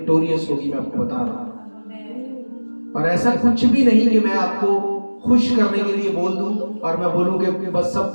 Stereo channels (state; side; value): inverted; both; correlation -1.00